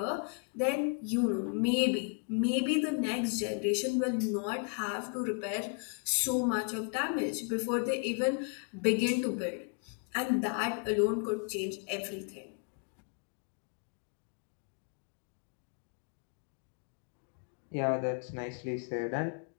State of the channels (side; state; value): right; quieter; 38.5 dB